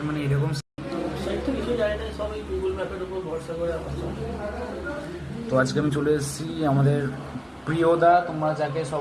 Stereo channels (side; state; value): both; identical; correlation 1.00